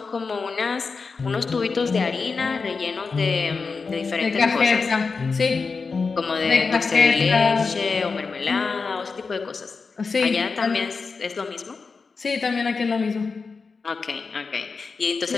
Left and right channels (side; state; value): right; quieter; 4.7 dB